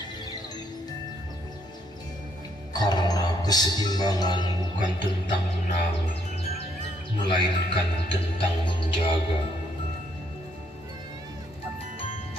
Karena keseimbangan bukan tentang menang, melainkan tentang menjaga.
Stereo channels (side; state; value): both; normal; correlation 0.71